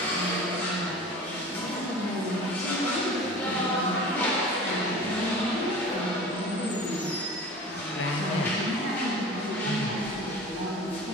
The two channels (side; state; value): both; normal; correlation 0.38